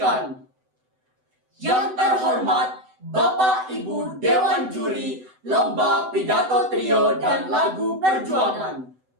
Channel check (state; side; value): late; left; 7.9 ms